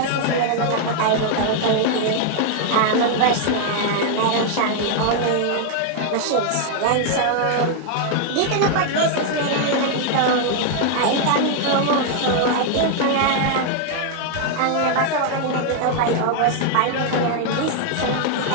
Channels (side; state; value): both; different; correlation 0.00